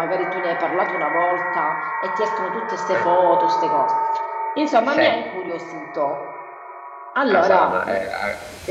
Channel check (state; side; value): identical; both; correlation 1.00